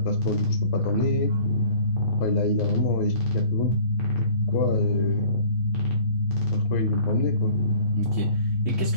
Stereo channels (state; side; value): late; right; 6.2 ms